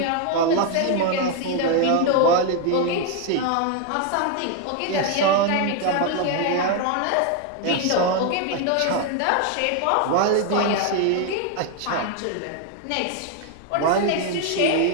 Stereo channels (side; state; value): both; different; correlation 0.01